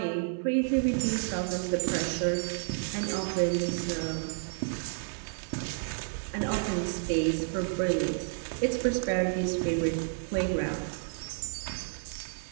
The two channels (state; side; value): silent; left; 57 dB below the other